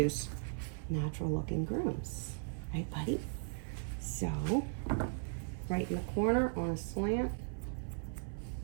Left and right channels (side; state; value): left; silent; 53 dB below the other